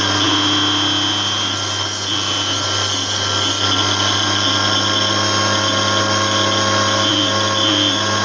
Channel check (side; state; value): both; identical; correlation 1.00